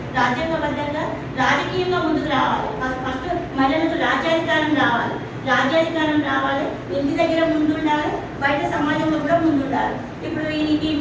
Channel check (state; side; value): identical; both; correlation 1.00